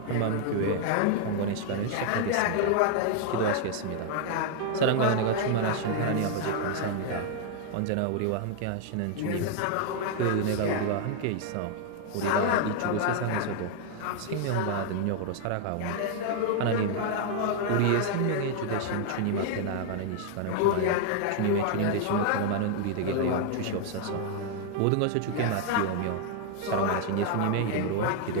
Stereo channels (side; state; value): both; different; correlation 0.00